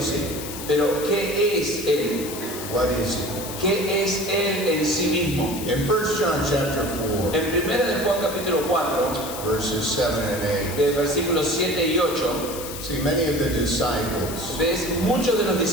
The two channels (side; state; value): left; noise; hiss, 10 dB below the sound